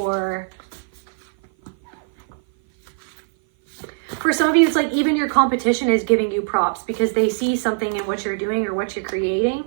for some of you, it's like even your competition is giving you props because they see something in what you're doing or what you're creating.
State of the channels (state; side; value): silent; left; 57 dB below the other